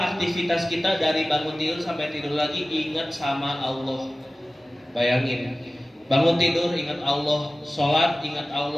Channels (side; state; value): both; normal; correlation 0.97